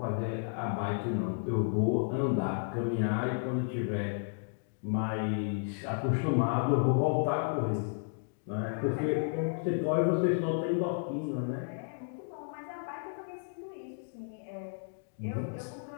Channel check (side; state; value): right; silent; digital silence